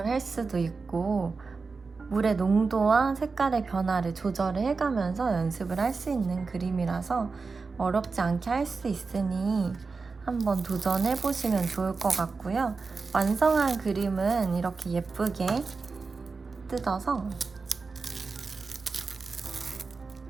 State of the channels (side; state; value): left; quieter; 4.4 dB